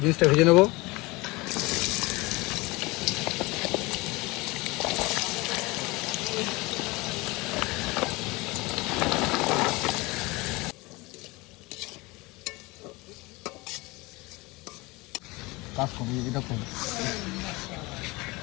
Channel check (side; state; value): right; quieter; 23.5 dB